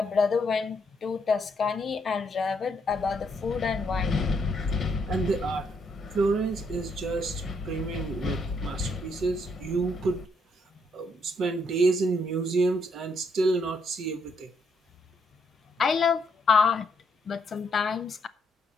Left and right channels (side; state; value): both; normal; correlation 0.74